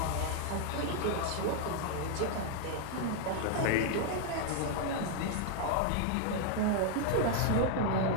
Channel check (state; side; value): different; both; correlation 0.00